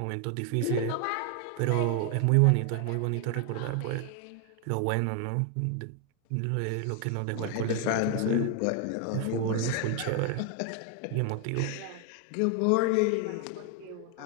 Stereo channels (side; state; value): both; different; correlation 0.00